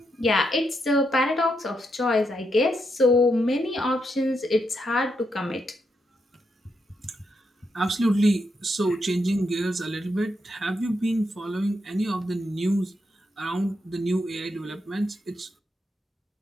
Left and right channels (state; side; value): normal; both; correlation 0.81